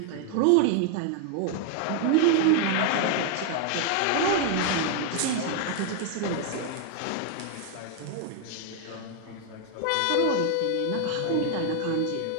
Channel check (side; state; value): both; different; correlation 0.00